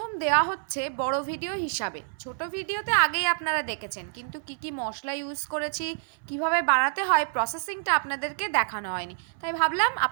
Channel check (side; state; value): left; silent; 60 dB below the other